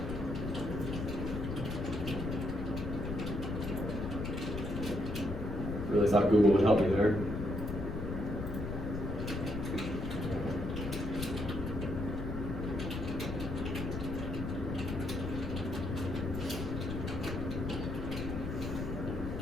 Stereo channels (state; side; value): noise; left; rumble, 4 dB below the sound